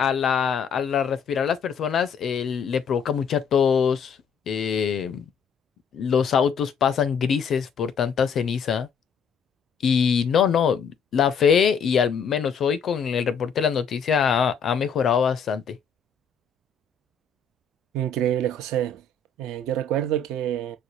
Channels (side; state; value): right; quieter; 5.4 dB